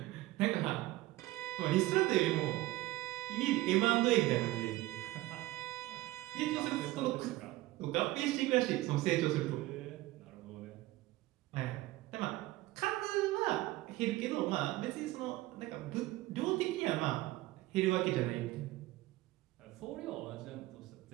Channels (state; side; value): quieter; left; 18.2 dB